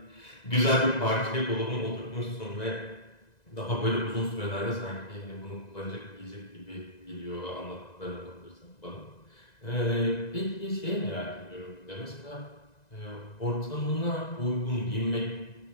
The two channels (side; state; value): right; late; 1.9 ms